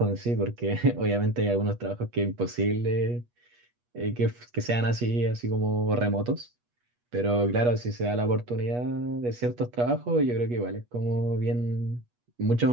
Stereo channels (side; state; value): left; late; 8.3 ms